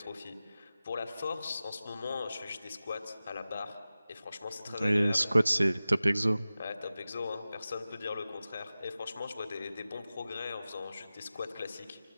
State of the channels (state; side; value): inverted; both; correlation -0.95